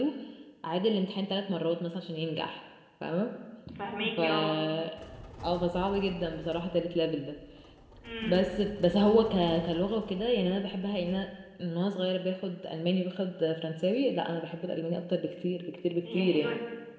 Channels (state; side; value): identical; both; correlation 1.00